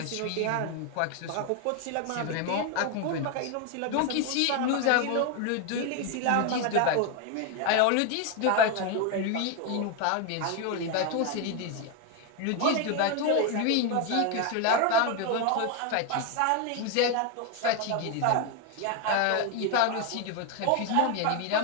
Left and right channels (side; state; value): both; different; correlation 0.01